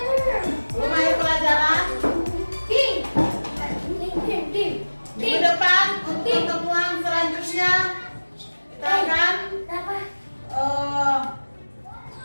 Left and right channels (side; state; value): both; inverted; correlation -1.00